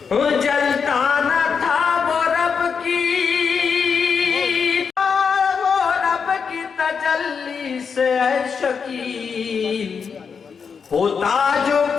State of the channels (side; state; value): right; quieter; 6.1 dB